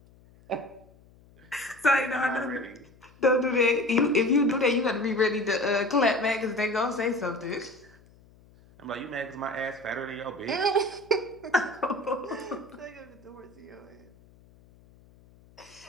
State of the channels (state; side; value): noise; left; hum, 27 dB below the sound